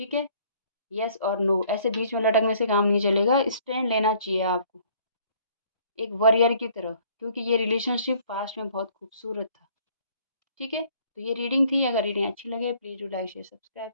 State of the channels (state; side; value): inverted; both; correlation -0.59